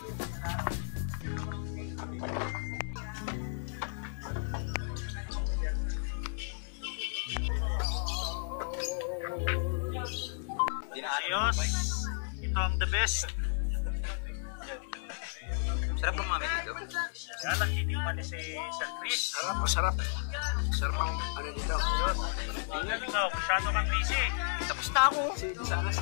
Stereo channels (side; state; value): right; silent; digital silence